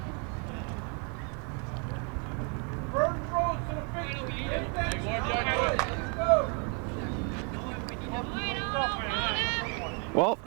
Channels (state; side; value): quieter; left; 36.7 dB